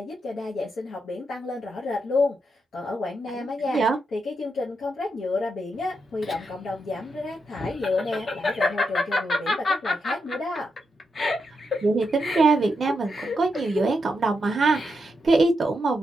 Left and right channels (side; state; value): both; normal; correlation 0.84